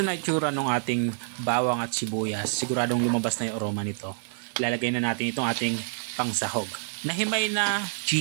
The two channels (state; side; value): silent; left; digital silence